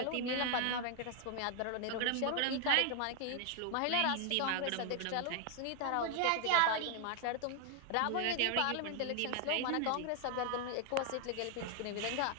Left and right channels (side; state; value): both; different; correlation 0.00